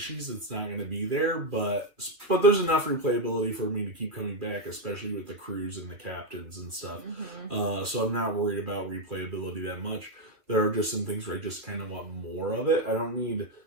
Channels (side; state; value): left; late; 2.7 ms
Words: that's not going to be there, but there's enough replayability for me to keep coming back, especially with the crews and the captains and stuff. So I'm not worried about replayability that much. There are just some things where I just kind of want more of it. I don't need